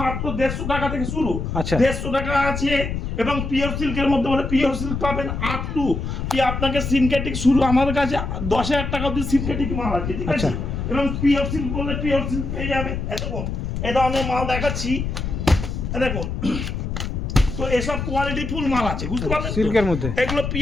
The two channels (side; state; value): left; noise; rumble, 4 dB below the sound